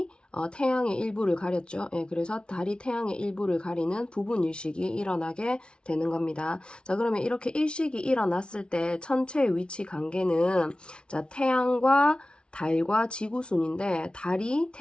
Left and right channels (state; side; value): late; right; 0.057 ms